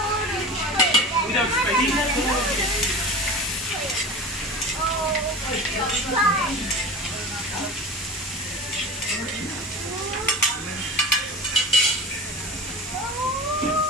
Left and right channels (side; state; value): both; normal; correlation 0.33